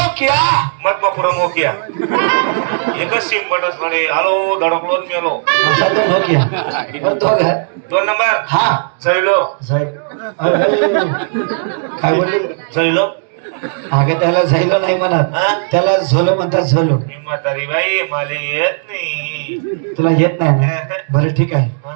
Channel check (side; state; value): left; silent; digital silence